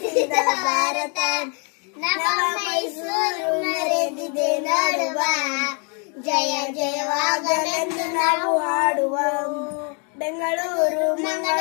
ಭಾರತ, ನವ ಮೈಸೂರು ಮೆರೆದಿದೆ ನೋಡುವ, ಜಯ ಜಯವಾಗಲೆಂದು ನಾವು ಹಾಡುವ, ಬೆಂಗಳೂರು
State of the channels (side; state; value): right; quieter; 37.3 dB